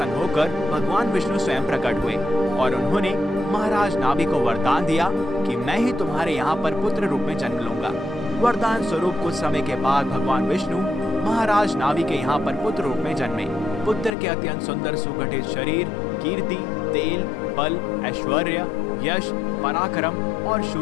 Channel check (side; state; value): right; drops out; at 14.1 s